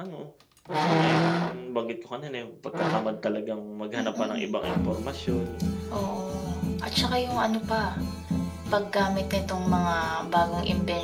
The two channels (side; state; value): both; identical; correlation 1.00